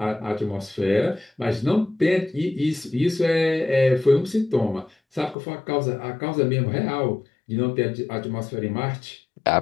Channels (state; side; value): drops out; right; at 5.4 s